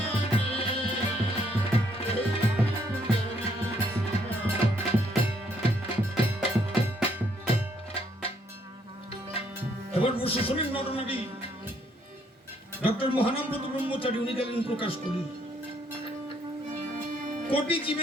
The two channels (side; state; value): both; normal; correlation 0.69